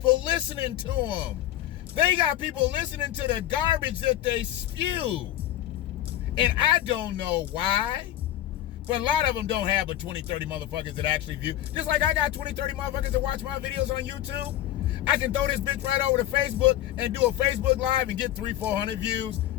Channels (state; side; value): quieter; right; 13.1 dB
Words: listening to them. They got people listening to the garbage that they spew. And I don't know why, But a lot of them don't have but 20, 30 motherfuckers that actually view. Just like I got 20, 30 motherfuckers that watch my videos on YouTube. I can throw this bitch right over to Facebook and do a Facebook Live and get 300, 400 views.